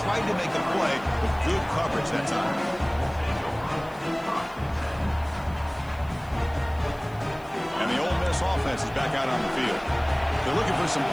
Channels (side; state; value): left; noise; hiss, 27 dB below the sound